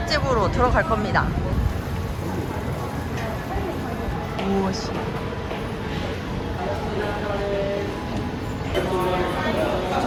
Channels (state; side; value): identical; both; correlation 1.00